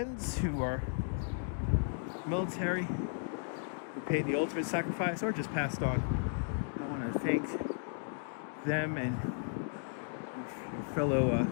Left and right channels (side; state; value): right; silent; digital silence